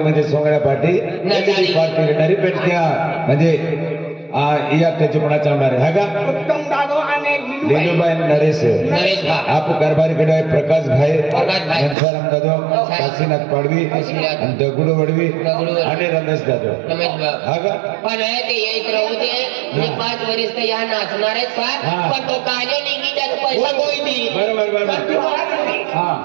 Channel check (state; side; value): drops out; left; at 12.0 s